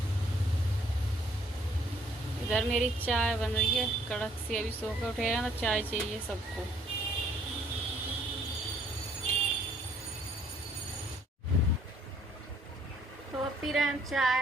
इधर मेरी चाय बन रही है कड़क सी, अभी सो के उठे हैं तो चाय चाहिए सबको। तो अब पी रहे हैं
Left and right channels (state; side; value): normal; both; correlation 0.63